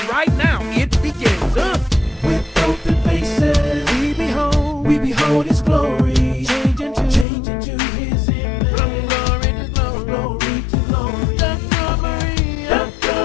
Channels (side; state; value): right; drops out; at 7.2 s